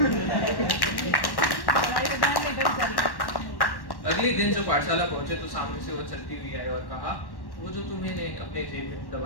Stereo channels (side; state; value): right; late; 1.1 ms